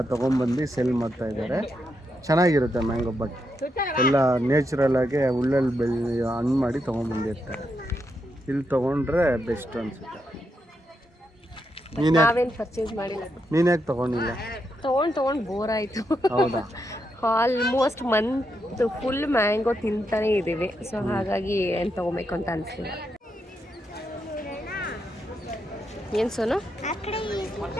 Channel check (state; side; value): normal; both; correlation 0.82